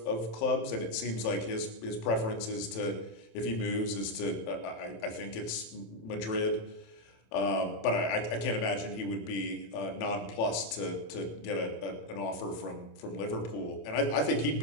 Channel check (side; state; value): right; late; 27 ms